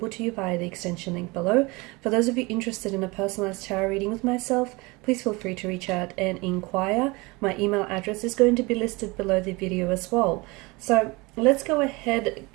to you via the extension link below. For those of you interested in a personalized tarot reading with myself, please feel free to reach out and inquire. My email address is going to be listed below the video as well. So let's go ahead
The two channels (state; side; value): quieter; left; 24.9 dB